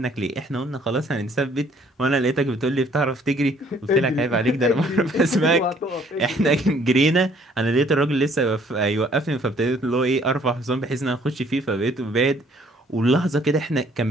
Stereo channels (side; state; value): both; normal; correlation 0.61